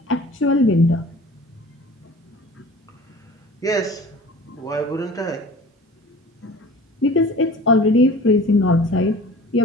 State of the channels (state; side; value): normal; both; correlation 0.43